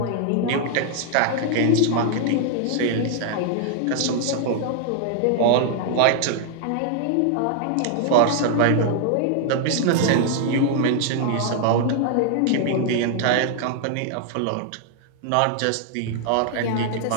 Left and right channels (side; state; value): both; different; correlation 0.00